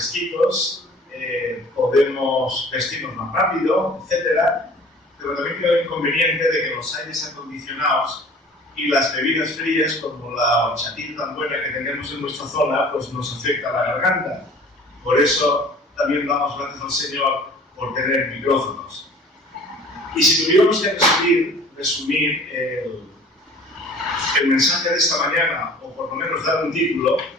podemos vestirnos más rápido, etc. Pero también tiene el inconveniente de que los aires acondicionados y las bebidas frías, como la horchatita tan buena que tenemos en nuestra zona, pues nos afecta la garganta. Por eso también damos gracias al Señor por tener micrófonos. Y si tuviéramos que resumir el mensaje de esta mañana, o por lo menos dar un título,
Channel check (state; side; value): normal; both; correlation 0.47